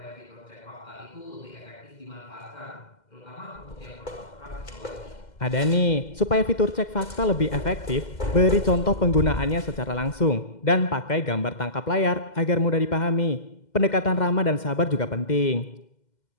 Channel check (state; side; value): late; right; 2.1 ms